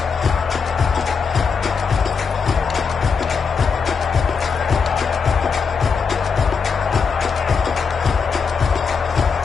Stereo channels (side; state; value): right; quieter; 5.6 dB